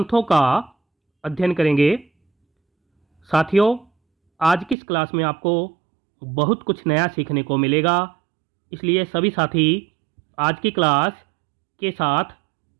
का अध्ययन करेंगे। साथियों, आज की इस क्लास में आपको बहुत कुछ नया सीखने को मिलेगा, इसलिए सभी साथी आज की क्लास के साथ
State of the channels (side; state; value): left; drops out; at 4.8 s